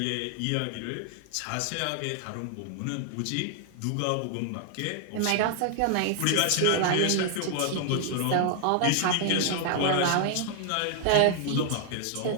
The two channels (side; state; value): both; different; correlation 0.00